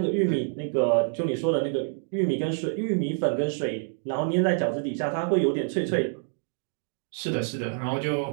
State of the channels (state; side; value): silent; left; digital silence